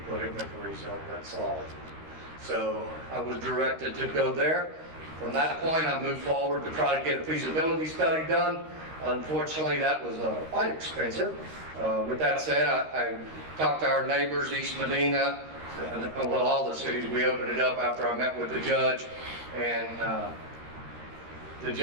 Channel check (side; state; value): left; late; 13 ms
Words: put it in the Carrizo. That's solid. So I was directed to go there. From that point, I moved forward to try to get a feasibility study done. Unfortunately, that was quite expensive. With that said, I talked to our neighbors, East Medina, well, all the cities. We opened it up after I met with the judge, and the